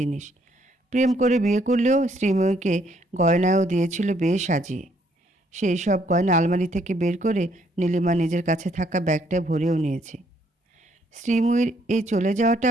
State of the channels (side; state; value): both; normal; correlation 0.69